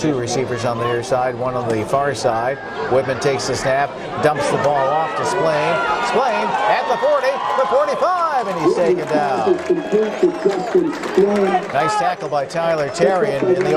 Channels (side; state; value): both; identical; correlation 1.00